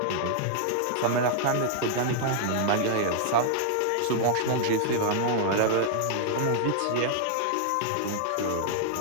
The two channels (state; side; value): different; both; correlation -0.01